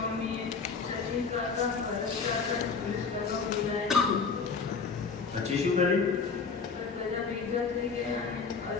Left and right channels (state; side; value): quieter; right; 5.2 dB